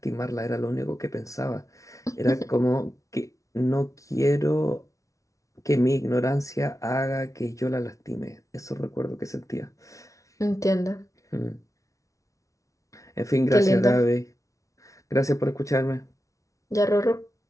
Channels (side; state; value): right; late; 0.16 ms